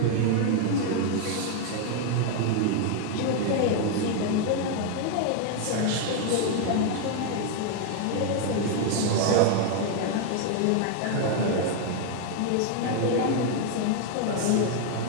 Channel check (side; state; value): both; different; correlation 0.00